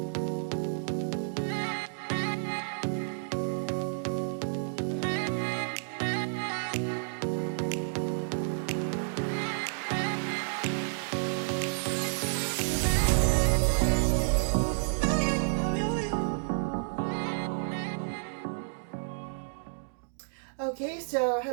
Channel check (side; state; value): left; silent; digital silence